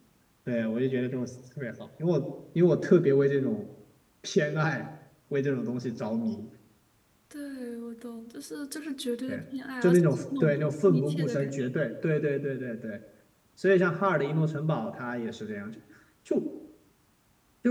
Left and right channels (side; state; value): both; identical; correlation 1.00